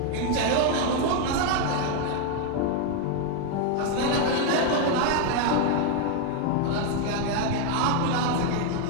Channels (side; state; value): both; different; correlation 0.01